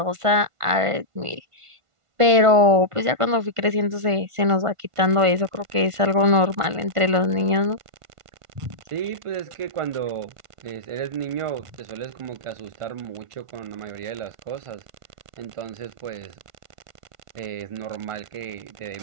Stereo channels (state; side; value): late; left; 1.5 ms